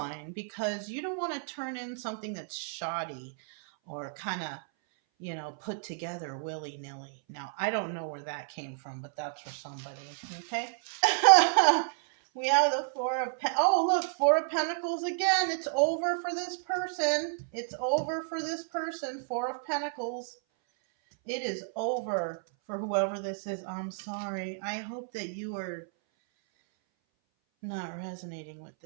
because you don't want to turn in something that's shoddy or kind of, you know, put together willy-nilly. Now, I don't know where that came from, but that's for somebody, okay? We have the oh, look, Four of Pentacles again. It's over for this person. It's over for this person. Four of Pentacles. It is over for whoever this is. I'm sorry. I hope that you are not resonating with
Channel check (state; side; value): silent; left; 57 dB below the other